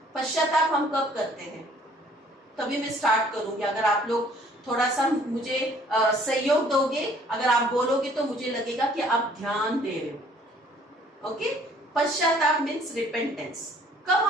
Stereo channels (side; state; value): both; normal; correlation 0.58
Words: पश्चाताप हम कब करते हैं? तभी मैं स्टार्ट करूंगी। अगर आप लोग थोड़ा सा मुझे सहयोग दोगे, अगर आप बोलोगे तो मुझे लगेगा कि आप ध्यान दे रहे हो। ओके, पश्चाताप मीन्स रिपेंटेंस। कब